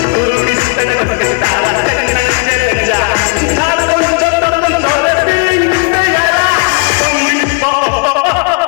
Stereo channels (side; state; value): right; quieter; 33.9 dB